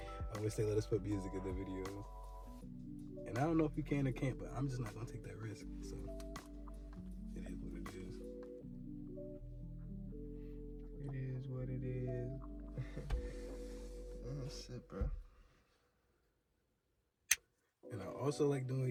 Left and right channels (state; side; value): identical; both; correlation 1.00